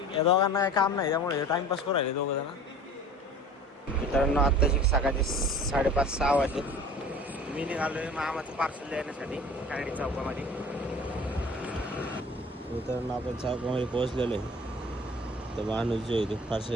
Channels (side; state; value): both; normal; correlation 0.43